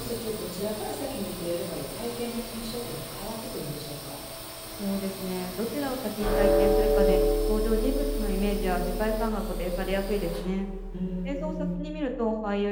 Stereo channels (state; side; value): identical; both; correlation 1.00